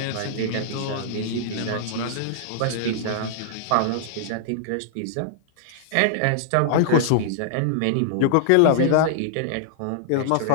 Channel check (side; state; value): both; different; correlation -0.01